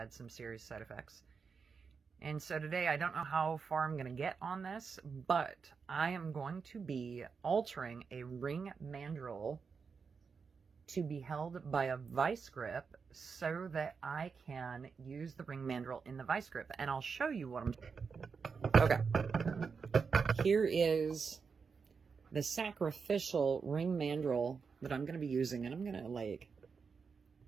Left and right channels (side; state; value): left; quieter; 5.5 dB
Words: some serious side effects. And so today, I don't know how far I'm going to get on this, but I am going to be altering a ring mandrel to be held by a vice grip so that I can use the ring mandrel in the vice grip. And I'll show you what I'm doing. Okay. Here is the sacrificial ring mandrel that I'm going to be using. And I'm going to like